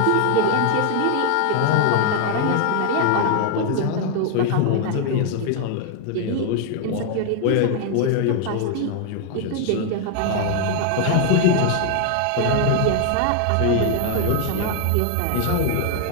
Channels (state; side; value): different; both; correlation 0.00